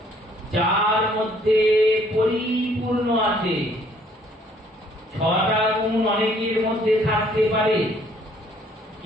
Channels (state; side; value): normal; both; correlation 0.62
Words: যার মধ্যে পরিপূর্ণ আছে। 6টা গুণ অনেকের মধ্যে থাকতে পারে,